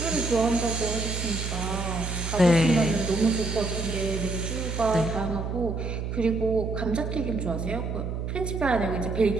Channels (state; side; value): noise; right; hum, 4 dB below the sound